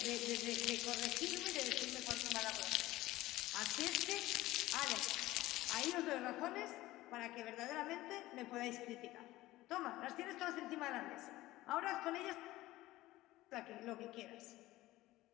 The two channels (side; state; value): right; quieter; 17.2 dB